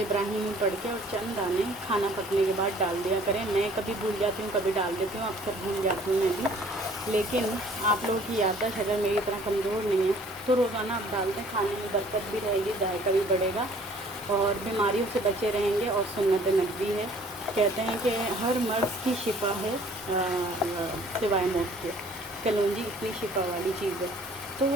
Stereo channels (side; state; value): both; normal; correlation 0.55